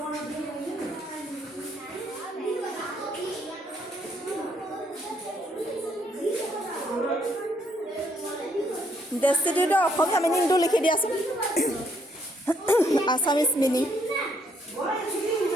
ডেষ্টিটিউটৰ অসমীয়া মিনিংটো লিখি দিয়াচোন আছামিজ মিনিং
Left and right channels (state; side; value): normal; both; correlation 0.71